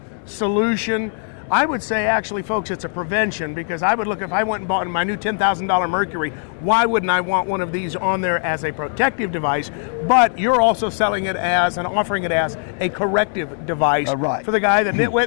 solution. I would say, actually, folks, it's a prevention, because I would look, if I went and bought my new $10,000 Mercury, why wouldn't I want one of these on there as a protective device? But you're also selling it as and offering it as a corrective device right. for the guy, the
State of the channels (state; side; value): silent; right; 60 dB below the other